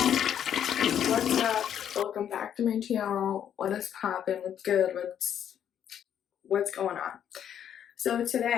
what's up? Welcome back to my channel. What is poppin'? What's good? What's going on? So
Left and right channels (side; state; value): right; quieter; 9.4 dB